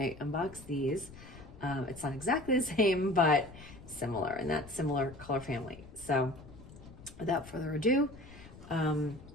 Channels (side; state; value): left; noise; rumble, 18 dB below the sound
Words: unbox these. It's not exactly the same, but similar in that similar color family. So without further ado,